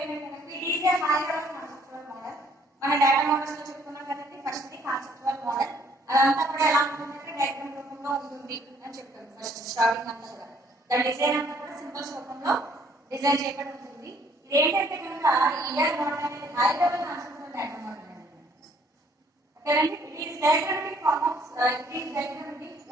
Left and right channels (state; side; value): normal; both; correlation 0.63